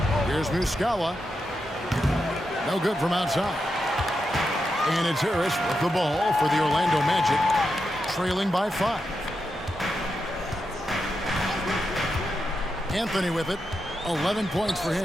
Here's Muscala. No good from outside. And it's Harris with the ball for the Orlando Magic, trailing by 5. Anthony with it. 11 points for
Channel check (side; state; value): both; normal; correlation 0.86